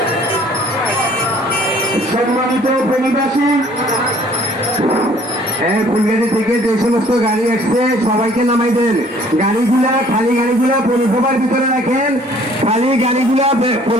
সম্মানিত প্রণীবাসী, ফুলগাড়ি থেকে যে সমস্ত গাড়ি আসছে সবাইকে নামাই দেন। গাড়িগুলা খালি গাড়িগুলা পৌরসভার ভিতরে রাখেন, খালি গাড়িগুলা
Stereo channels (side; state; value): both; normal; correlation 0.56